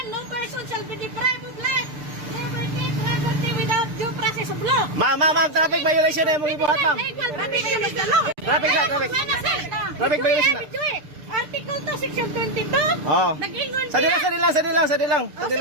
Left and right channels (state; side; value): late; left; 6.8 ms